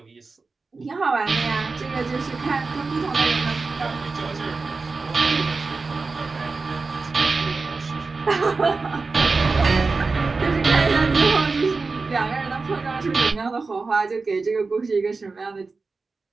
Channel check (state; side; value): quieter; left; 4.1 dB